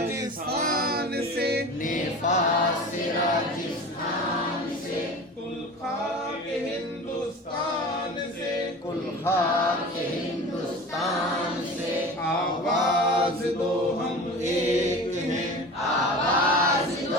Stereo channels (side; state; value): both; normal; correlation 0.36